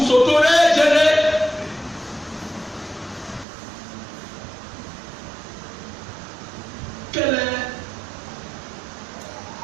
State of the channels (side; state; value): left; drops out; at 3.5 s